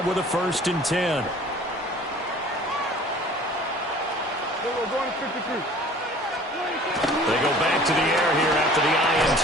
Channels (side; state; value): both; normal; correlation 0.48